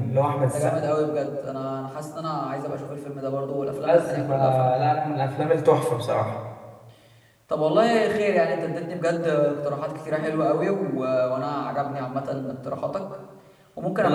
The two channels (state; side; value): identical; both; correlation 1.00